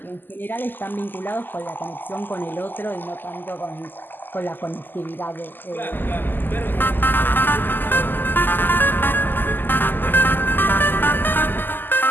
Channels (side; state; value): right; late; 0.090 ms